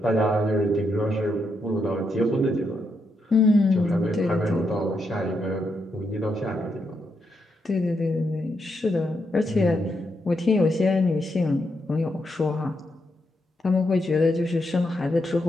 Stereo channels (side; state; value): both; normal; correlation 0.81